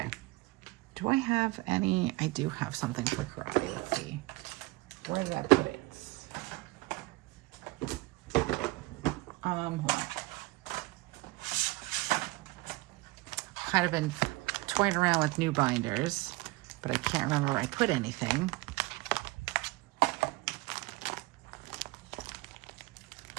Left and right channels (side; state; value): left; quieter; 22.2 dB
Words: Do I have any? I do have something for karate. Let's see. Where did I put it? Hold on. Kind of been toying around with new binders, but I can't remember where I put anything.